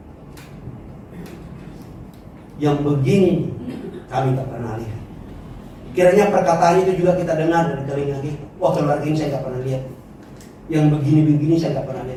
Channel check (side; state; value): both; identical; correlation 1.00